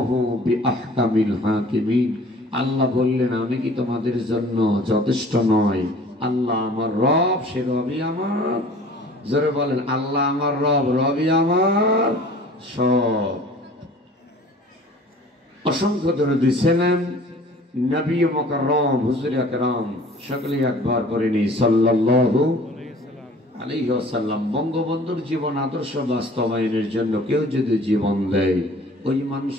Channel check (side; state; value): both; normal; correlation 0.48